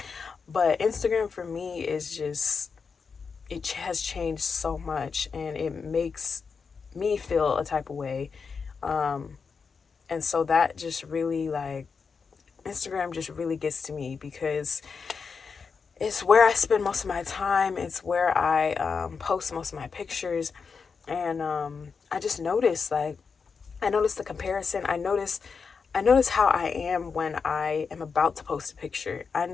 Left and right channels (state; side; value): quieter; right; 5.4 dB